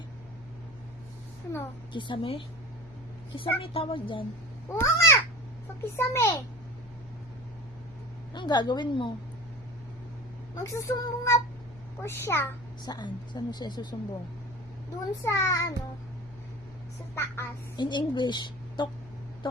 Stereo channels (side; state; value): left; noise; hum, 22 dB below the sound